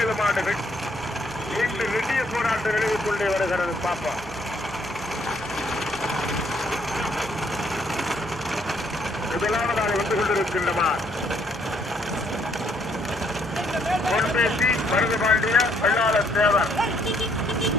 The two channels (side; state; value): both; normal; correlation 0.68